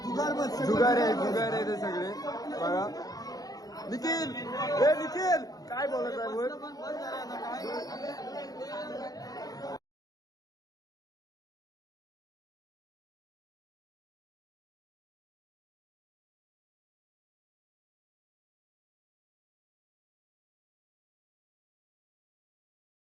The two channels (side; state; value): right; late; 0.18 ms